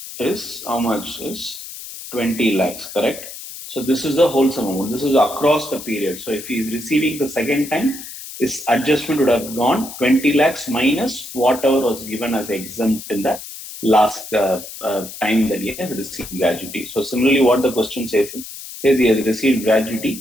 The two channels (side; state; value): left; noise; hiss, 12 dB below the sound